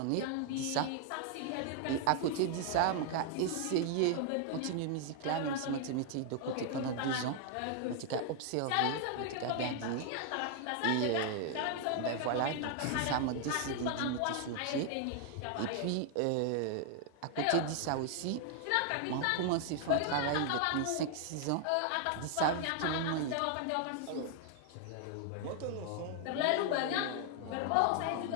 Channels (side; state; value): both; different; correlation 0.00